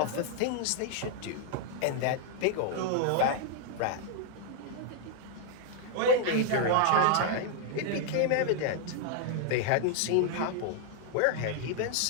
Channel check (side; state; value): both; different; correlation 0.00